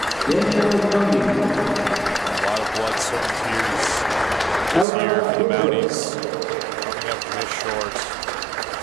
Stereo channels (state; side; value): drops out; left; at 4.9 s